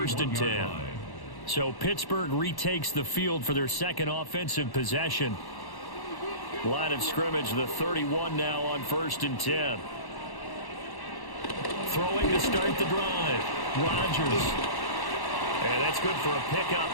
and 10. So Pittsburgh retakes the field for their second offensive possession. Line of scrimmage, the 31 now on 1st and 10. Throwing to start the drive. Rodgers. And that's good for a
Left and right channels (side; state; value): right; late; 1.1 ms